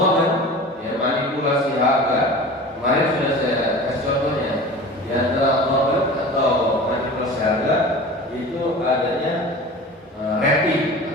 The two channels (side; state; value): both; normal; correlation 0.37